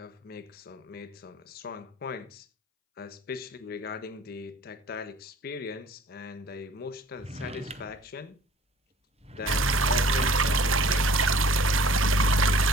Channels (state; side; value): normal; both; correlation 0.51